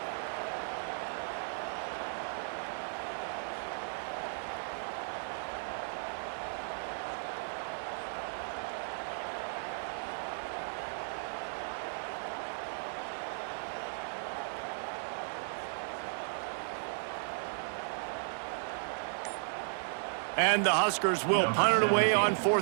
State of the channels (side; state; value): left; silent; digital silence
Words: And the Huskers will punt it away on